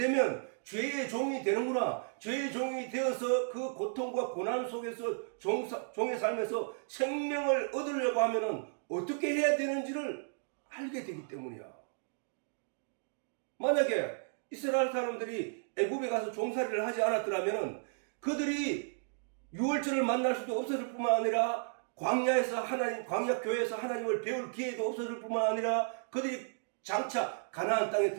죄의 종이 되는구나. 죄의 종이 되어서 그 고통과 고난 속에서 종의 삶에서 생명을 얻으려고 하면은 어떻게 해야 되는지를 알게 되기 때문이야. 만약에 이스라엘 사람들이 애굽에 가서 종살이를 하지 않았더라면은 그들이 유월절을 만날 수도 없었을 뿐만 아니라 광야에서 광야 교회에서 하나님을 배울 기회도 없었을 뿐만 아니라 그들이 장차 가나안 땅에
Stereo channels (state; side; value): silent; left; digital silence